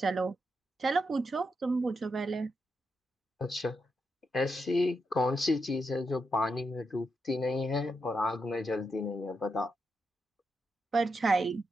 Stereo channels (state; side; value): normal; both; correlation 0.84